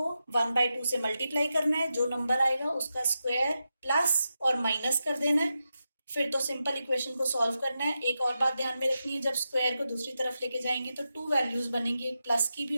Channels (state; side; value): inverted; both; correlation -0.89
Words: 1/2 से मल्टीप्लाई करना है, जो नंबर आएगा उसका स्क्वायर प्लस और माइनस कर देना है, फिर तो सिंपल इक्वेशन को सॉल्व करना है। एक और बात ध्यान में रखनी है, जब स्क्वायर को दूसरी तरफ लेके जाएंगे तो 2 वैल्यूज बनेंगी, एक प्लस की भी